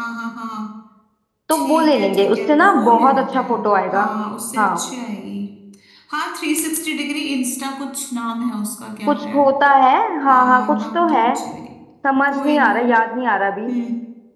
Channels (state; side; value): identical; both; correlation 1.00